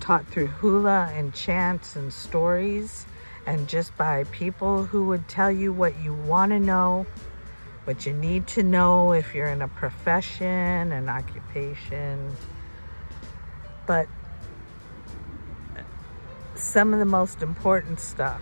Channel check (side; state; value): both; inverted; correlation -1.00